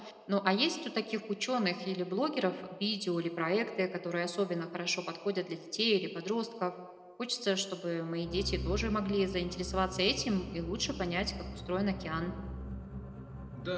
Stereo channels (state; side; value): identical; both; correlation 1.00